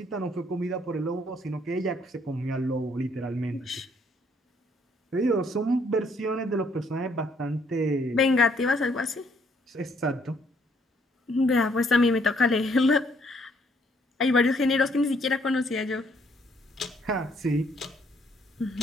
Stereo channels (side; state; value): both; normal; correlation 0.67